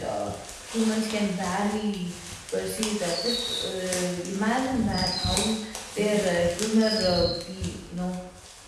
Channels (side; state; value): both; identical; correlation 1.00